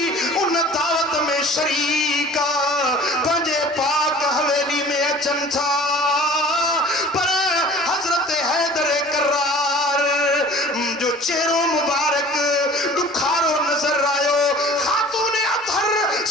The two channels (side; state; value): both; normal; correlation 0.46